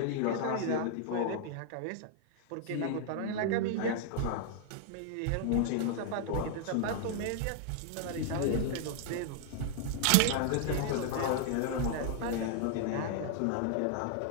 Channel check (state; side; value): different; both; correlation 0.00